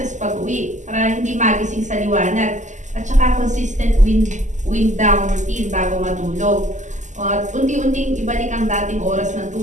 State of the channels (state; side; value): late; left; 0.35 ms